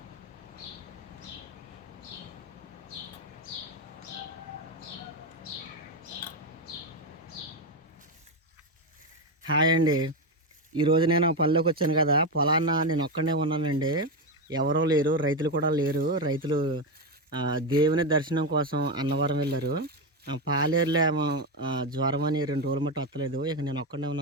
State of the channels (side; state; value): both; normal; correlation 0.11